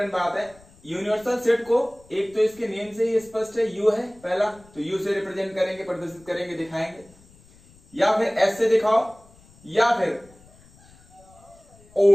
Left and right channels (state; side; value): noise; left; rumble, 27 dB below the sound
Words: बात है, यूनिवर्सल सेट को एक तो इसके नेम से ही स्पष्ट है, यू है पहला, तो यू से रिप्रेजेंट करेंगे, प्रदर्शित करेंगे, दिखाएंगे, या फिर एस से दिखाओ या फिर